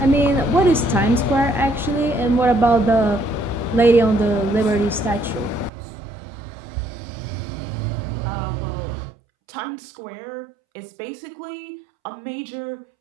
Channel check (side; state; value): left; drops out; at 5.7 s